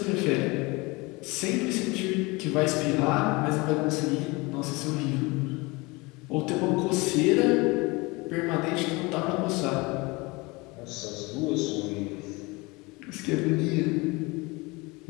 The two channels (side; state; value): right; quieter; 24.7 dB